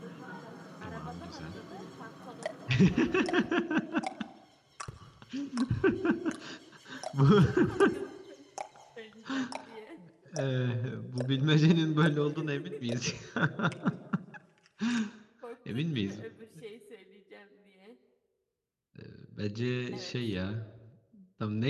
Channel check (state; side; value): identical; both; correlation 1.00